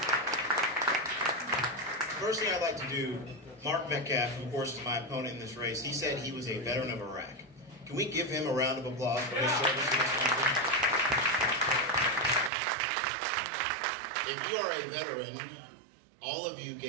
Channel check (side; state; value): left; drops out; at 12.5 s